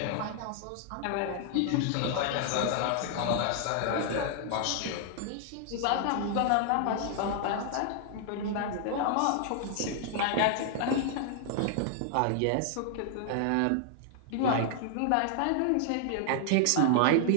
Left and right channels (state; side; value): different; both; correlation 0.00